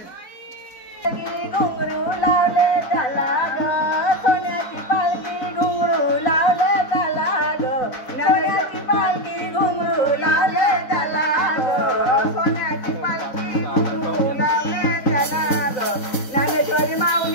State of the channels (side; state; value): right; late; 3.6 ms